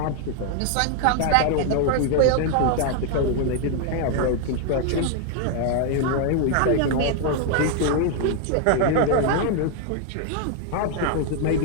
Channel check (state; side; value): different; both; correlation 0.00